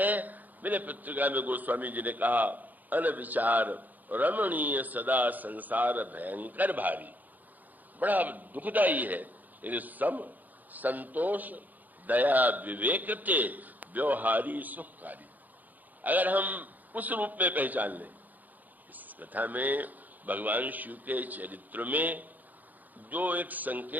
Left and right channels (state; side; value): late; left; 0.083 ms